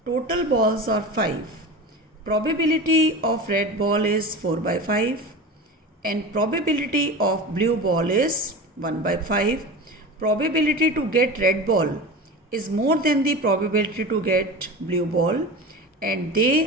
Total balls are 5. Probability of red ball is 4 by 5 and probability of blue ball is 1 by 5. Probability to get red ball is more than the probability to get blue ball, and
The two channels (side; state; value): both; normal; correlation 0.30